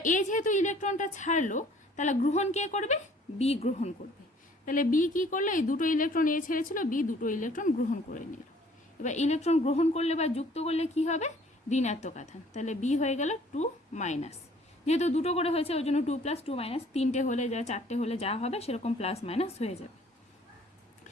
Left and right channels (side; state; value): both; normal; correlation 0.56